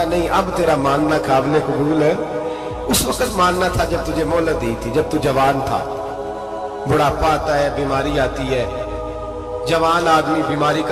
نہیں، اب تیرا ماننا قابل قبول ہے. اس وقت ماننا تھا جب تجھے مہلت دی تھی، جب تو جوان تھا. بڑھاپا آتا ہے، بیماری آتی ہے. جوان آدمی بیماری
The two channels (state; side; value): identical; both; correlation 1.00